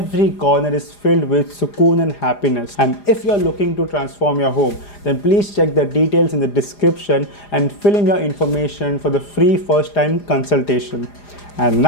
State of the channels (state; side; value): late; right; 4.9 ms